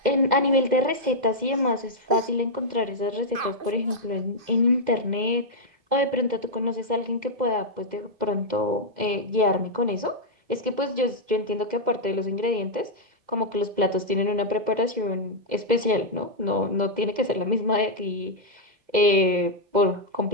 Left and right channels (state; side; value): late; left; 2.0 ms